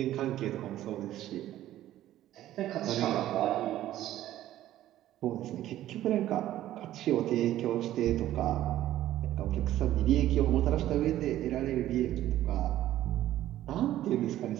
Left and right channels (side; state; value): left; quieter; 13.5 dB